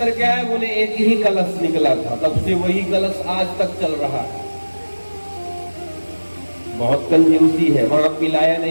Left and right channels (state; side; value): inverted; both; correlation -1.00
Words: क्या है? बोले एक ही कलश निकला था, तब से वही कलश आज तक चल रहा है। बहुत कंजूसी है, वहां पिलाया